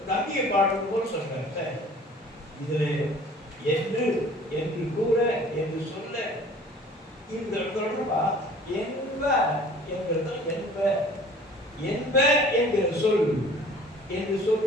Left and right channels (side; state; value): both; normal; correlation 0.49